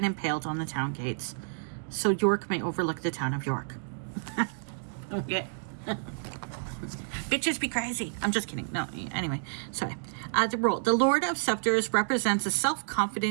impaled on the town gates, so York may overlook the town of York. Okay. Bitches be crazy. I'm just kidding. No, anyway, sorry. The role. The Lord of Scepters represents a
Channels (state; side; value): silent; left; digital silence